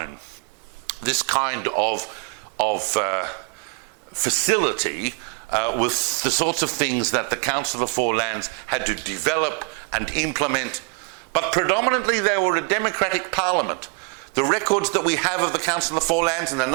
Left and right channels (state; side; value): quieter; left; 32.4 dB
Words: This kind of facility was the sorts of things that the Council of the Four Lands had to develop and implement, but predominantly they were a democratic parliament. The records that we have of the Council of the Four Lands and a